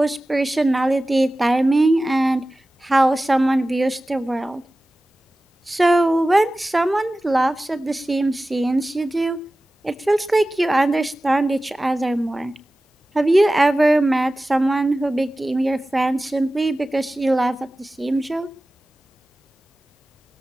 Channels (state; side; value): normal; both; correlation 0.96